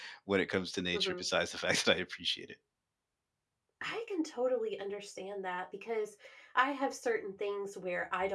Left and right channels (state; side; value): identical; both; correlation 1.00